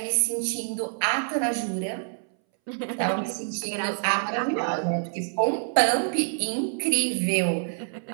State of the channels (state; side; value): silent; left; 61 dB below the other